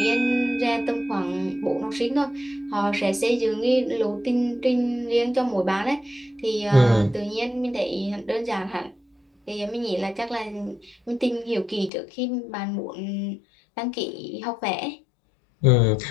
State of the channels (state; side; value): drops out; right; at 11.9 s